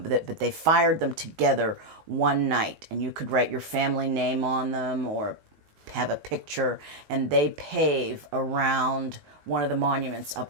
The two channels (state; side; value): late; left; 19 ms